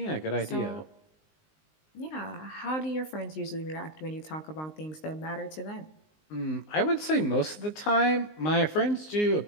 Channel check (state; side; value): late; right; 19 ms